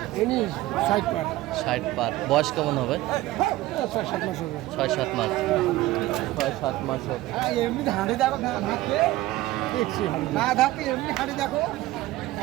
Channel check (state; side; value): quieter; left; 17.0 dB